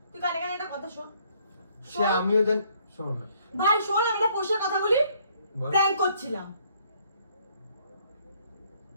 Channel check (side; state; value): both; inverted; correlation -0.65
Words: তুই কানে একটা কথা শোন। সে আমিও জানি, শোন না ভাই শোন, আমি একটা পোষার কথা বলি। বল। প্র্যাঙ্ক করছিলাম,